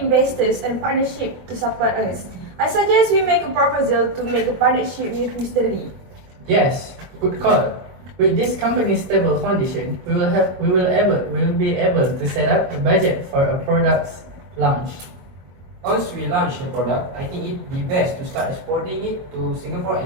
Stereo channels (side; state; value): left; late; 22 ms